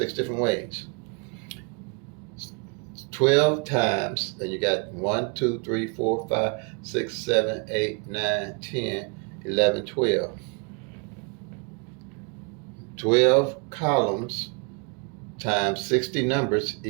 different ways. 12 times, and you got 1, 2, 3, 4, 5, 6, 7, 8, 9, 10, 11, 12. 12 columns times 60 numbers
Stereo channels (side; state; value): left; quieter; 35.5 dB